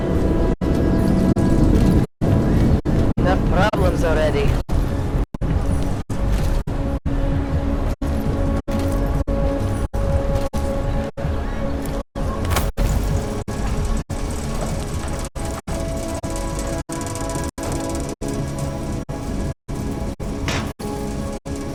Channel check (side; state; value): both; identical; correlation 1.00